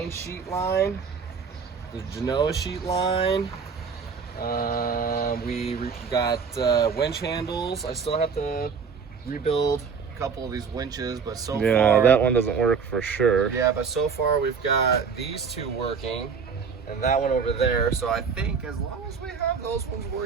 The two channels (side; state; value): left; quieter; 5.8 dB